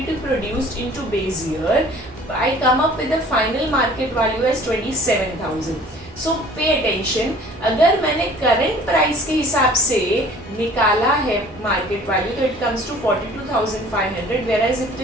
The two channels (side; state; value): both; normal; correlation 0.50